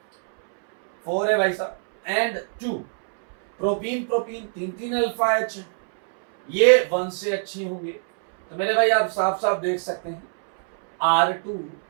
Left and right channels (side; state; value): left; silent; 62 dB below the other